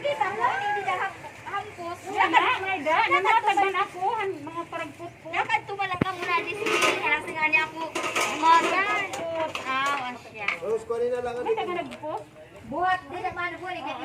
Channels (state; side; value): identical; both; correlation 1.00